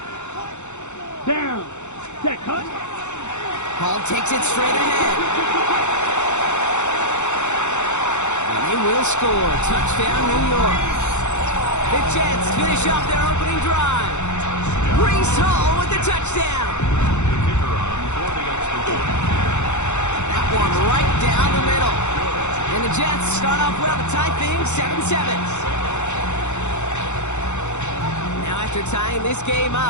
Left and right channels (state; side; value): late; right; 0.83 ms